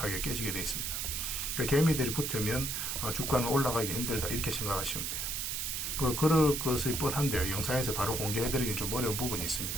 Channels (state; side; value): noise; right; hiss, 2 dB below the sound